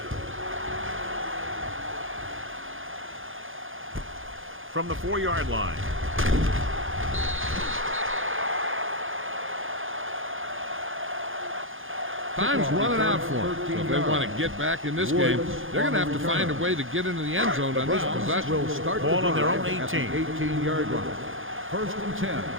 From the 4-yard line. Time's running out for them. So if they want to get back in this game, they're going to have to find a way to get into the end zone on this possession. Will start ball on their own 18. 18-yard line. 1st and 10.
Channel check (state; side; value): late; left; 0.59 ms